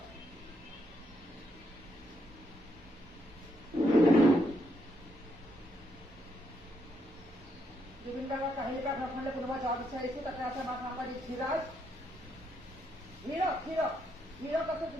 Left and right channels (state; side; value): normal; both; correlation 0.77